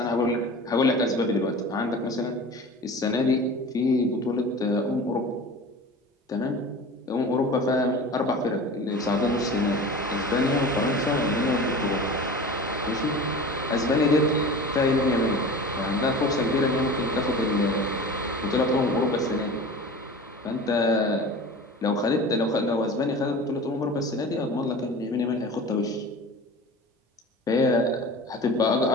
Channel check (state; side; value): normal; both; correlation 0.36